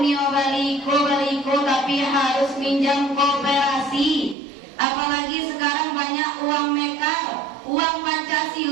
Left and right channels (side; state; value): left; drops out; at 4.4 s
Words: baliko tapi harus minjam koperasi. Apalagi sekarang banyak uang mekar, uang